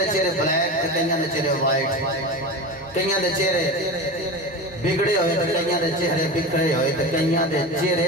चेहरे ब्लैक ते कईयां दे चेहरे वाइट, कईयां दे चेहरे बिगड़े हुए तो कईयां दे चेहरे बिखरे हुए तो कईयां दे चेहरे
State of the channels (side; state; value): both; normal; correlation 0.27